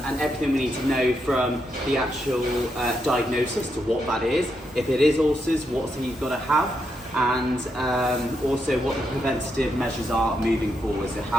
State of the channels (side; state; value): both; normal; correlation 0.81